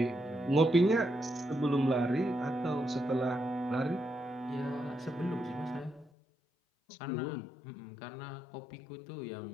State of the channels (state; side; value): drops out; right; at 6.1 s